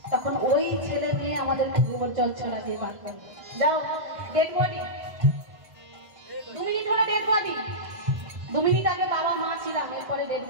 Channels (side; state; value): left; late; 1.5 ms